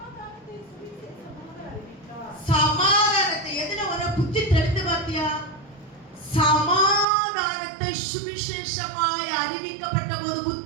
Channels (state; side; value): drops out; left; at 7.1 s